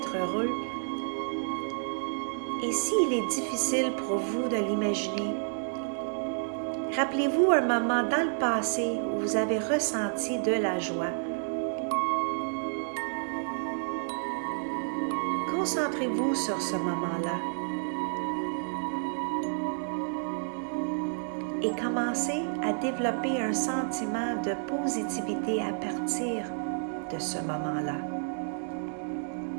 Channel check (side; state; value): left; silent; digital silence